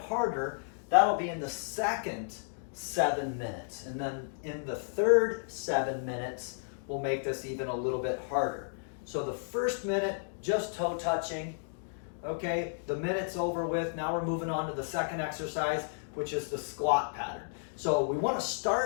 that'll be in the second 7 minutes. And then in the third 7 minutes, we'll make this even a little bit harder. So the first minute, just toe touching, okay? The minute's over with. Now we're moving on to the second exercise, which is the squat pattern. So we want to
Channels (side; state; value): right; silent; digital silence